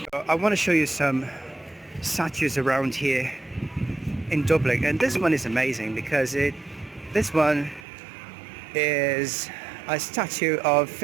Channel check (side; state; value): left; drops out; at 7.9 s